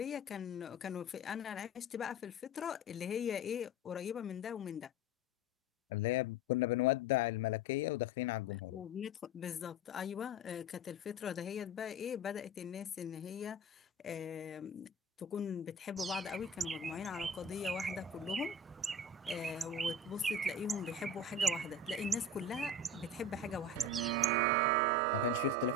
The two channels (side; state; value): both; normal; correlation 0.31